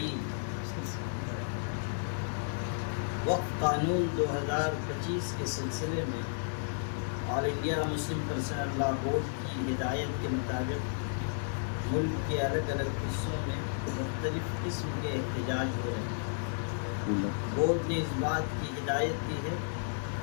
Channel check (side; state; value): right; silent; digital silence